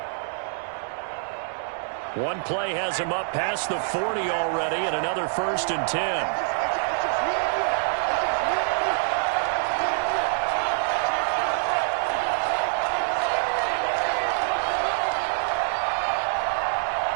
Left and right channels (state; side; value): silent; left; digital silence